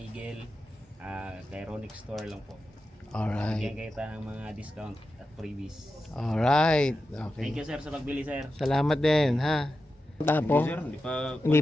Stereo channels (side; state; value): both; normal; correlation 0.91